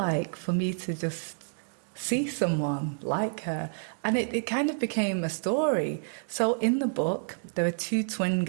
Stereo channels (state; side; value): silent; left; digital silence